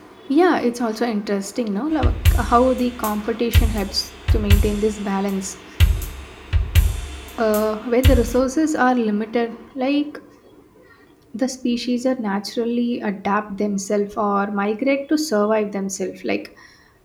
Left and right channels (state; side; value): identical; both; correlation 1.00